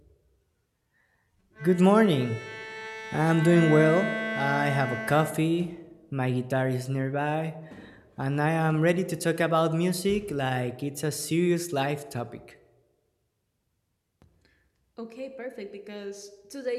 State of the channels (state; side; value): identical; both; correlation 1.00